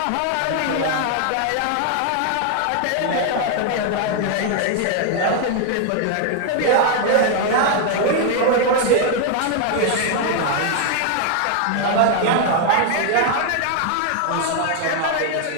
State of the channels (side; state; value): both; different; correlation 0.00